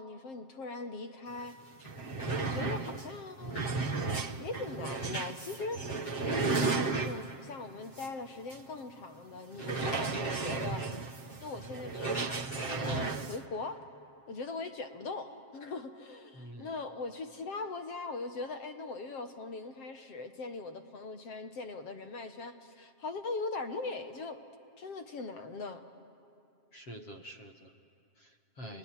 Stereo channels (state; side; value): late; right; 7.5 ms